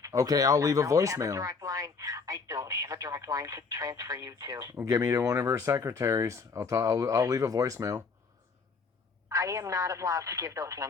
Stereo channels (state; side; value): quieter; right; 4.8 dB